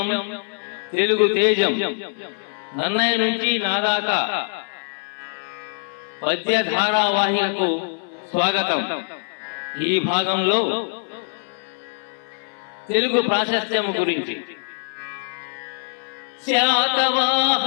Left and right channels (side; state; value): right; silent; 58 dB below the other